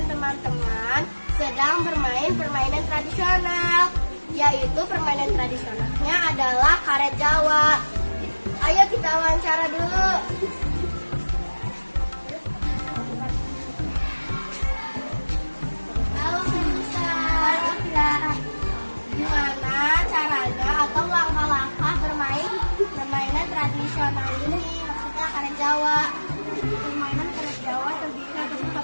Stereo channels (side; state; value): both; inverted; correlation -1.00